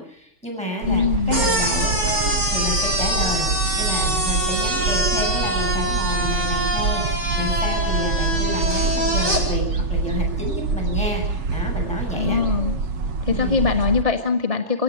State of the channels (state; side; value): late; left; 3.4 ms